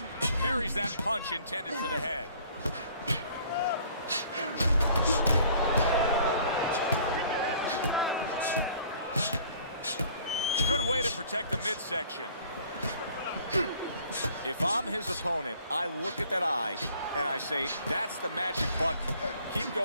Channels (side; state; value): both; inverted; correlation -0.55